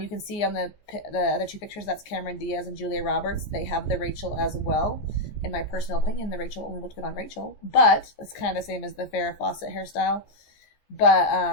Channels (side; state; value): right; late; 14 ms